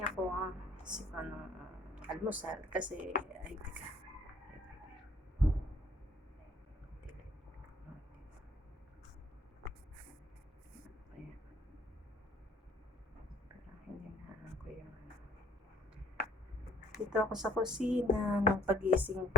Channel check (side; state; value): both; normal; correlation 0.63